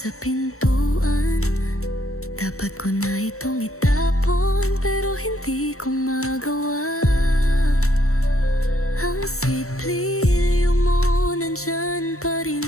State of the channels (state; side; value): late; right; 0.63 ms